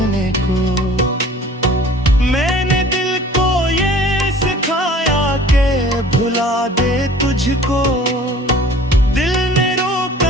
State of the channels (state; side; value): normal; both; correlation 0.48